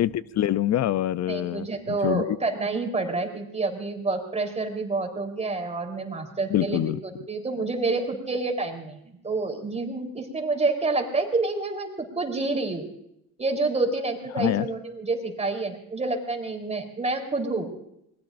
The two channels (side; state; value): both; normal; correlation 0.30